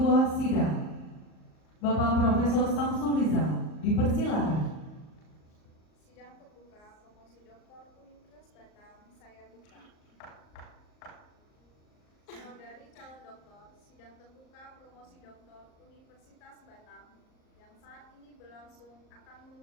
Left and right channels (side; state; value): right; late; 38 ms